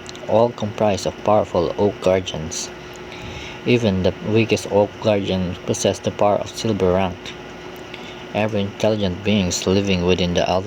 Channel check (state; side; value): identical; both; correlation 1.00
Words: all comprised of powerful Oak Guardians. Even the weakest Oak Guardian possessed the power of silver rank. Every intelligent being living within the